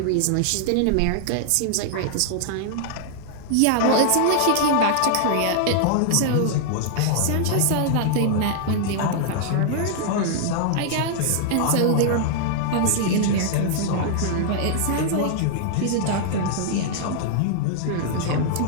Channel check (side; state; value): both; different; correlation -0.01